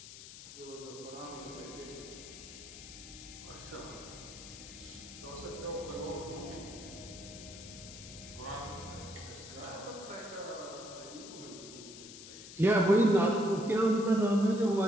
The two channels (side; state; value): left; noise; hiss, 14 dB below the sound